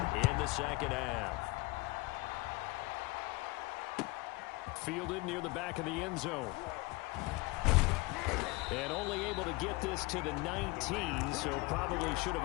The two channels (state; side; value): quieter; right; 23.4 dB